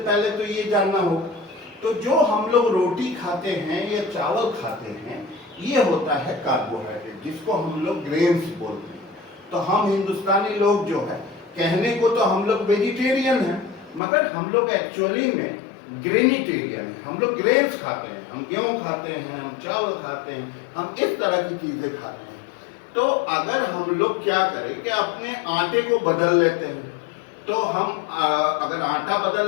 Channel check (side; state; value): right; drops out; at 14.0 s